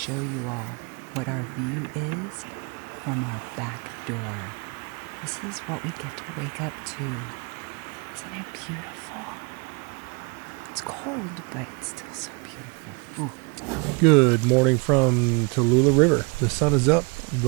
you all what our view is from our back door. This is what we get to wake up to. Isn't it beautiful? It's cold, but it's still so beautiful. Ooh. Good morning from Tallulah River. The sun is up,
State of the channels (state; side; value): quieter; left; 32.4 dB